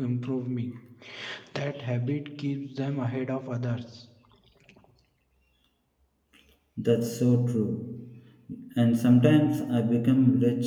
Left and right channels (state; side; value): identical; both; correlation 1.00